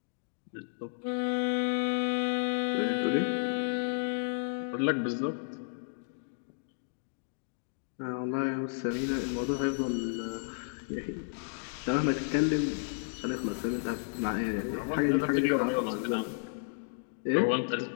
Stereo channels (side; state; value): right; silent; digital silence